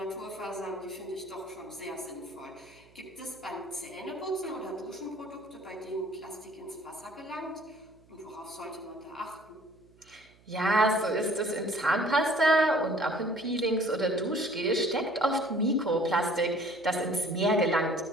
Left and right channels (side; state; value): right; noise; hum, 29 dB below the sound